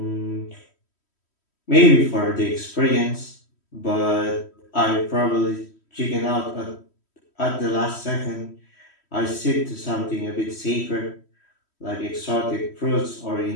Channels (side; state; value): right; late; 3.1 ms